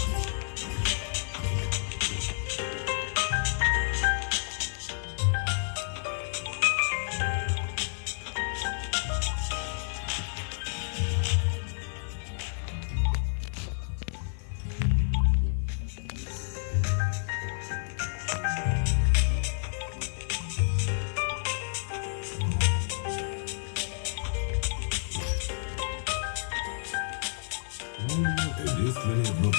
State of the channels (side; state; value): right; silent; 58 dB below the other